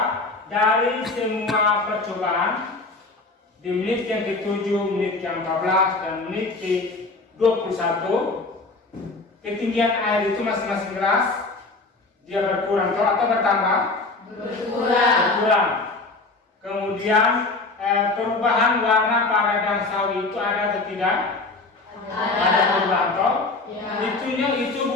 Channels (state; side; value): quieter; right; 3.5 dB